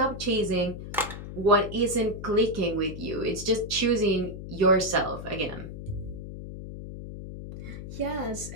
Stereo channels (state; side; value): noise; left; hum, 10 dB below the sound